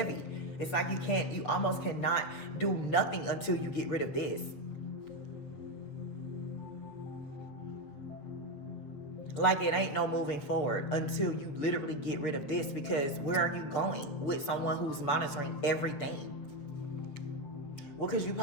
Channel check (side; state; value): right; late; 7.5 ms